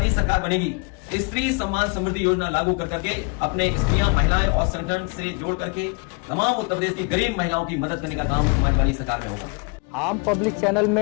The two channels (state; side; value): quieter; right; 31.8 dB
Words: सरकार बनेगी। स्त्री सम्मान समृद्धि योजना लागू कर करके अपने स्त्रियां, महिलाएं और संगठन से जोड़ करके तमाम उत्तर प्रदेश की गरीब महिलाओं की मदद करने का काम समाजवादी सरकार में होगा। आम पब्लिक चैनल